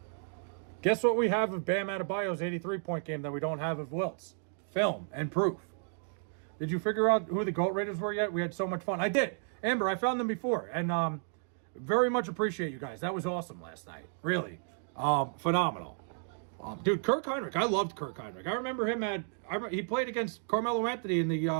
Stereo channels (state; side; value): silent; left; 56 dB below the other